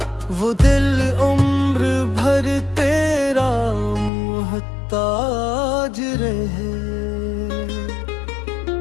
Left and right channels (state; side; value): drops out; right; at 4.1 s